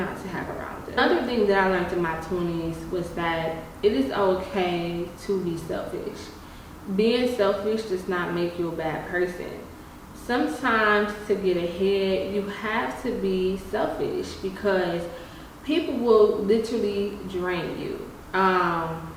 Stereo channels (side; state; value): both; identical; correlation 1.00